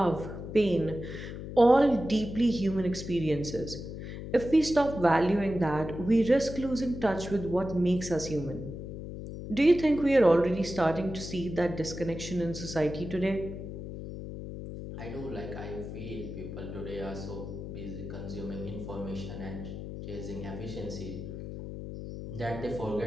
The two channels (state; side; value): noise; left; hum, 8 dB below the sound